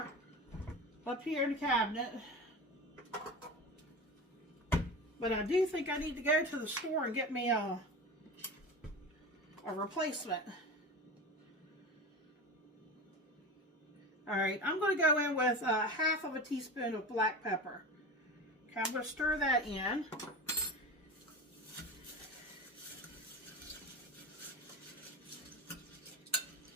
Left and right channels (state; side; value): normal; both; correlation 0.28